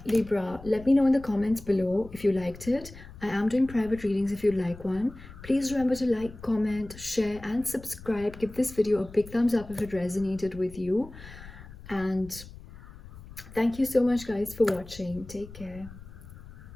Libra. Let me know in the comments below if you liked it. I am doing private readings if you'd like one. Please remember to like, comment, share, and subscribe. Give this video a big thumbs up if it resonated with you. And thank you so much, guys, for watching. Take care.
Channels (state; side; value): noise; left; rumble, 17 dB below the sound